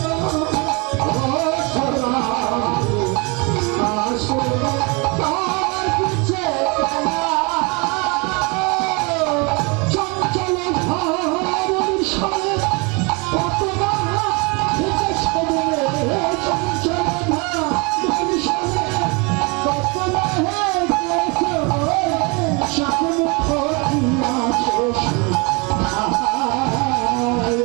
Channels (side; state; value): left; quieter; 29.7 dB